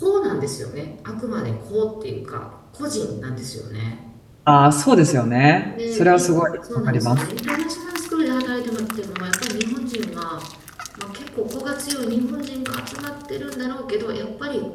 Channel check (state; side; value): identical; both; correlation 1.00